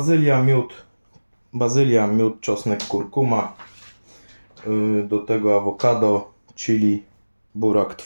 miód, czosnek, kurkuma, do tego awokado, chili, burak,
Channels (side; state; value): both; inverted; correlation -1.00